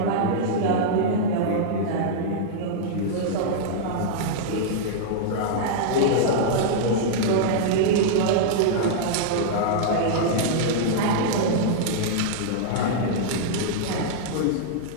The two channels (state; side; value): different; both; correlation -0.02